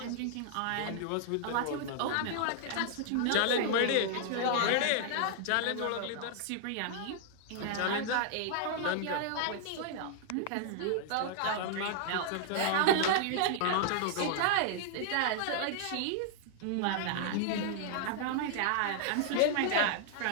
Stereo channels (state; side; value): different; both; correlation -0.01